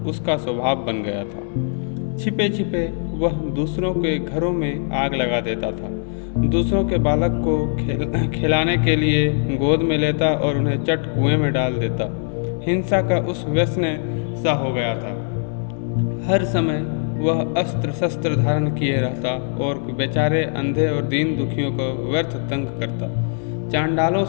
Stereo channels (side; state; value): right; silent; 64 dB below the other